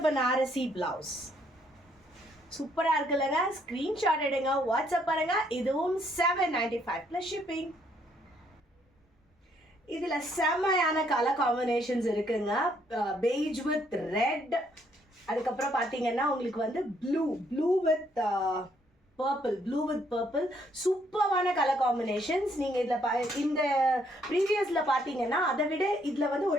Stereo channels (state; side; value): normal; both; correlation 0.69